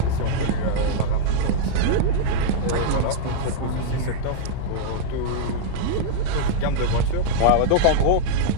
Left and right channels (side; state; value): both; different; correlation -0.02